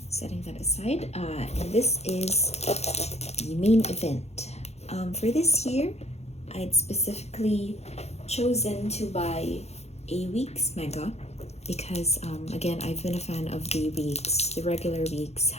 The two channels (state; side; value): late; right; 0.31 ms